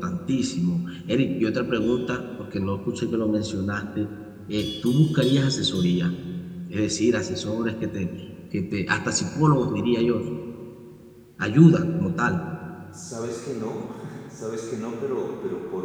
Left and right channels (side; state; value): both; identical; correlation 1.00